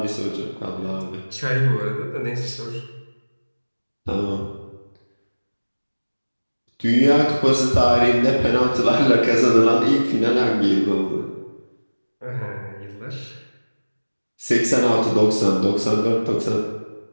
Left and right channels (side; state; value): both; inverted; correlation -1.00